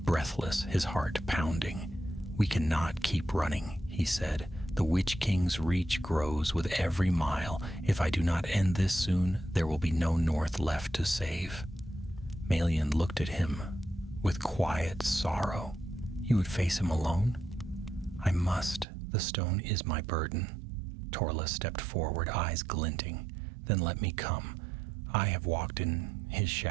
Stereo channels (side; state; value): left; drops out; at 18.9 s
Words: breathless, his heart pounding. "We cannot keep running," he said. "The Witch King's reach grows with every mile. If I do not end this soon, there will be no north left to save." Melian looked at him with quiet sorrow. "You would face him alone?" "I must. The stone is my burden." Torles stepped forward, eyes glinting. "Then let me come. I have walked in his